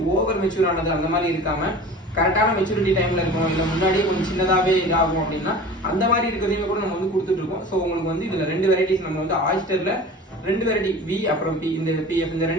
ஓவர் மெச்சூர் ஆனது அந்த மாதிரி இருக்காம கரெக்டான மெச்சூரிட்டி டைம்ல இருக்கும், இல்லை முன்னாடியே கொஞ்சம் சின்னதாவே இதாகும் அப்படின்னா அந்த மாதிரி இருக்கிறதையுமே கூட நம்ம வந்து கொடுத்துட்டு இருக்கோம். ஸோ உங்களுக்கு வந்து இதுல 2 வெரைட்டிஸ் நம்ம வந்து ஆயிஸ்டர்ல 2 வெரைட்டி வி அப்புறம் பி, இந்த பிஎஃப், இந்த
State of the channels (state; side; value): normal; both; correlation 0.39